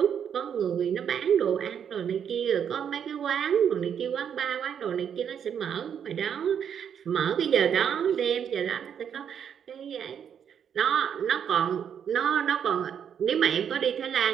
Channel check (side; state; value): left; quieter; 8.2 dB